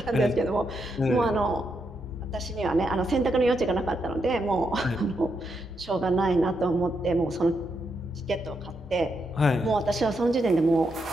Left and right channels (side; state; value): both; normal; correlation 0.81